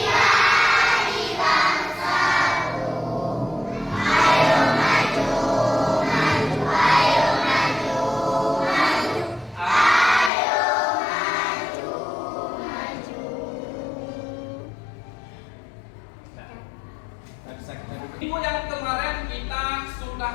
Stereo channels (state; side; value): drops out; right; at 10.3 s